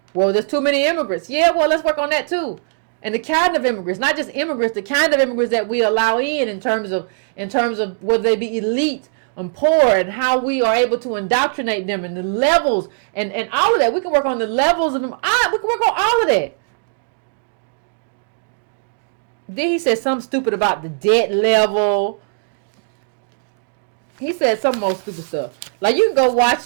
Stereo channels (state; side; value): silent; left; digital silence